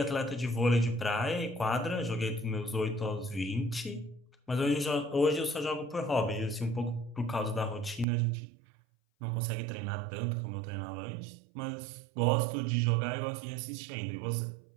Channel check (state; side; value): drops out; left; at 8.1 s